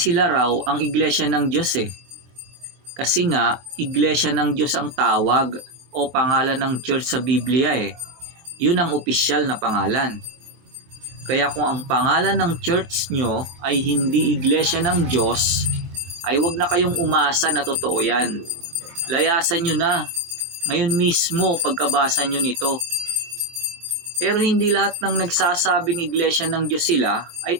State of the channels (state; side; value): late; left; 24 ms